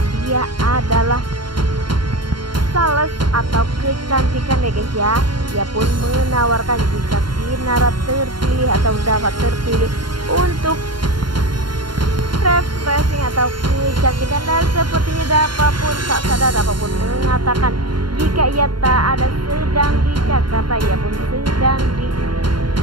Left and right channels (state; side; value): late; left; 0.72 ms